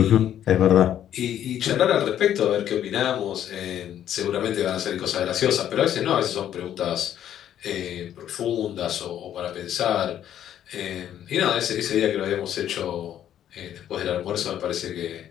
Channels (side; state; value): right; quieter; 10.7 dB